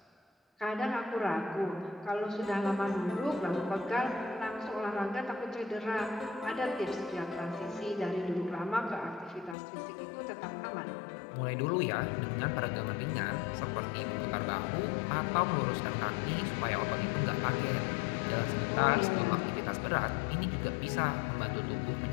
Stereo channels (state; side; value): drops out; right; at 9.6 s